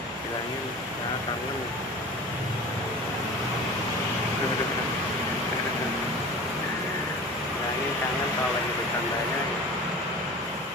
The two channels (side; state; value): both; normal; correlation 0.37